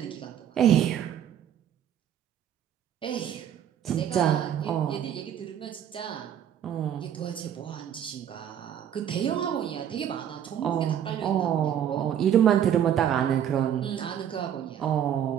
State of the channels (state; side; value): quieter; left; 9.7 dB